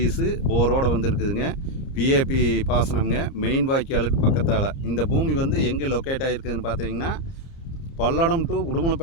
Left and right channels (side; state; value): right; late; 30 ms